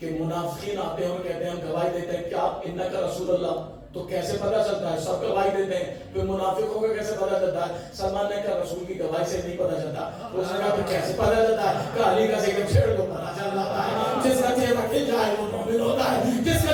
منافقین آتے ہیں اور کہتے ہیں ہم گواہی دیتے ہیں کیا انک رسول اللہ، تو کیسے پتا چلتا ہے؟ سب گواہی دیتے ہیں، پھر منافقوں کو کیسے پتا چلتا ہے؟ سلمان نے کہا رسول کی گواہی سے نہیں پتا چلتا. اس نے کہا پھر کیسے پتا چلتا ہے؟ کہ علی کا ذکر چھیڑ دو پتا چل جاتا ہے. جس کا چہرہ کھل جائے وہ مومن ہوتا ہے، جس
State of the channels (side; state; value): both; identical; correlation 1.00